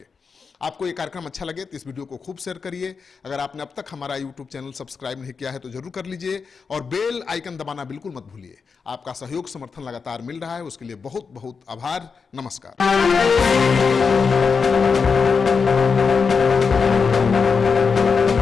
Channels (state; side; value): quieter; right; 5.4 dB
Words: आपको ये कार्यक्रम अच्छा लगे तो इस वीडियो को खूब शेयर करिए। अगर आपने अब तक हमारा यूट्यूब चैनल सब्सक्राइब नहीं किया है तो जरूर कर लीजिए, और बेल आइकन दबाना बिल्कुल मत भूलिए। आपका सहयोग समर्थन लगातार मिल रहा है, उसके लिए बहुत बहुत आभार। नमस्कार।